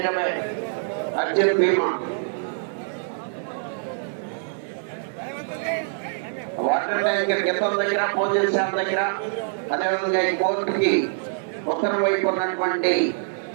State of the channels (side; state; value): left; silent; digital silence